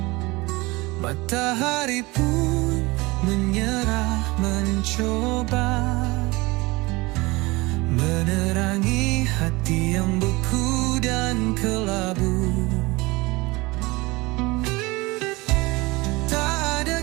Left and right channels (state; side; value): quieter; left; 22.9 dB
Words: Matahari pun menyerah mencoba menerangi hati yang beku dan kelabu.